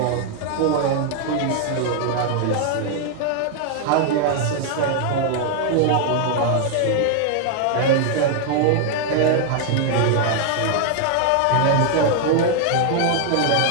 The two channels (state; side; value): different; both; correlation 0.00